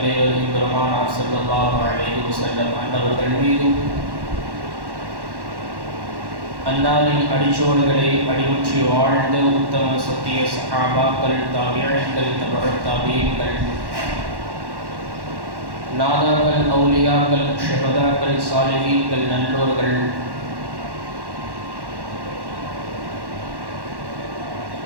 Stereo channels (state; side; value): late; left; 1.1 ms